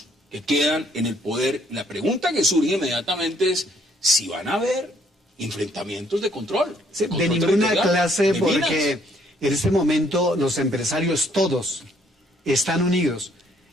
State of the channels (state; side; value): normal; both; correlation 0.66